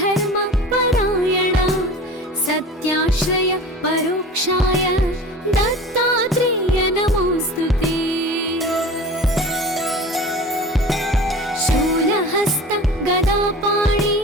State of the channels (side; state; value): both; normal; correlation 0.37